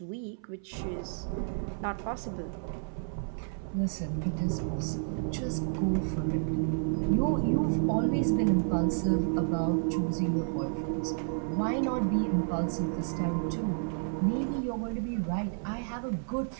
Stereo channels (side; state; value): left; silent; 57 dB below the other